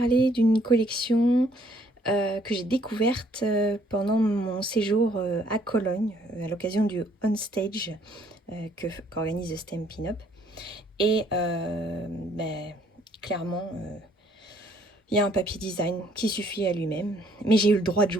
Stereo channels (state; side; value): normal; both; correlation 0.64